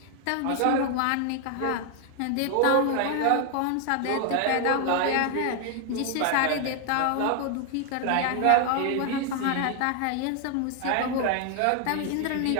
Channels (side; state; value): both; different; correlation 0.00